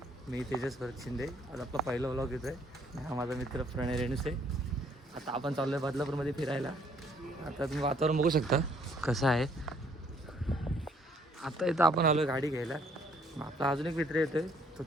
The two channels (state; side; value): normal; both; correlation 0.64